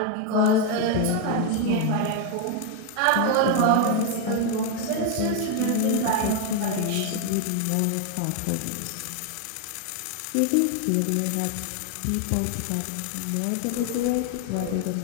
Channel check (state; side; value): different; both; correlation 0.01